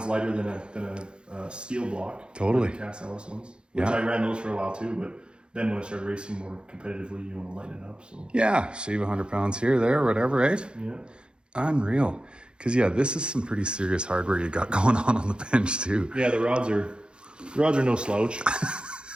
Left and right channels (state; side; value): late; left; 0.052 ms